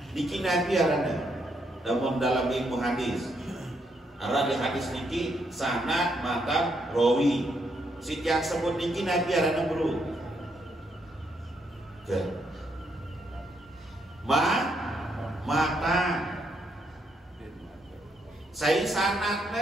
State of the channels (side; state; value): both; normal; correlation 0.76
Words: Niki Nabi arana namun dalam ilmu hadis arana hadis niki sanad matan rawi si yang sebut niki Nabi arana bro mata saya